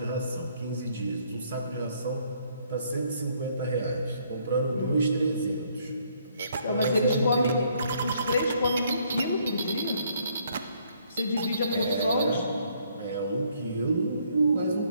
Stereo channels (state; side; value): inverted; both; correlation -0.67